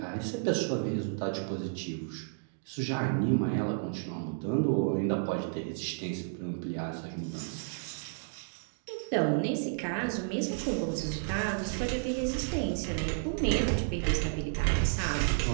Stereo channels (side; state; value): left; silent; digital silence